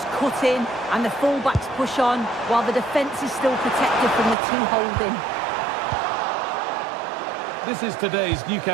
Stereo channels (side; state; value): left; drops out; at 4.4 s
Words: cut in and the full-backs push on, while the defence is still protected from the two holding. This is today's